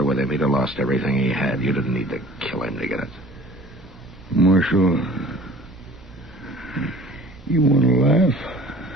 with him. He'd have lost everything he had. You didn't need to kill him to get it. Marshal, you want to laugh?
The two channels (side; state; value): right; noise; rumble, 23 dB below the sound